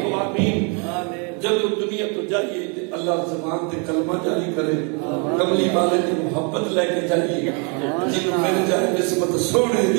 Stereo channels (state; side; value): quieter; left; 35.3 dB